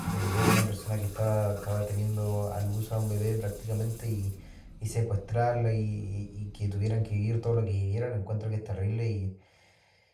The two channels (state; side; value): identical; both; correlation 1.00